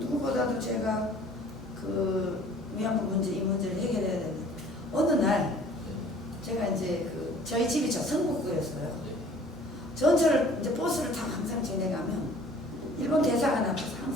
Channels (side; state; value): both; normal; correlation 0.52